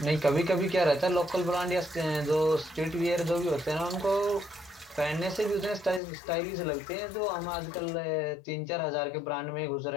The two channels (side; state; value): right; drops out; at 6.0 s